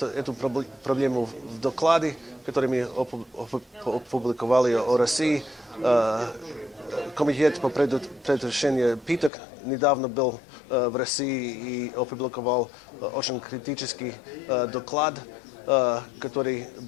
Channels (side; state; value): right; drops out; at 9.3 s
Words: проблему в докладе, который мы опубликовали о России. Комитет по предотвращению пыток недавно был в России и опубликовал очень критический доклад, который